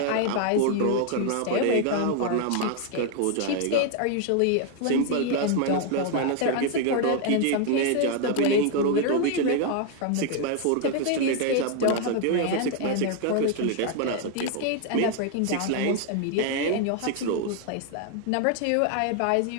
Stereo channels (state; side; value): different; both; correlation 0.00